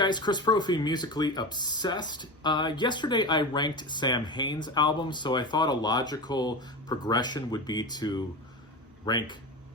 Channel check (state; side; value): normal; both; correlation 0.25